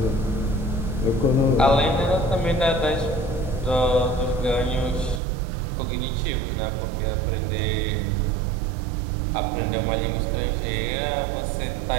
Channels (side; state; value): left; drops out; at 5.2 s